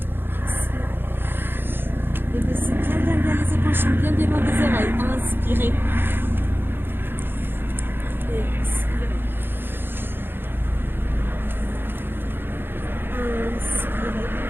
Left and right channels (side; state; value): left; late; 0.10 ms